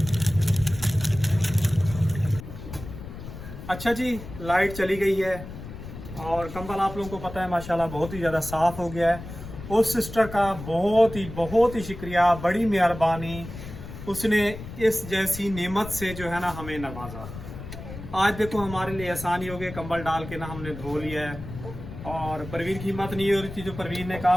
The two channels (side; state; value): left; noise; rumble, 11 dB below the sound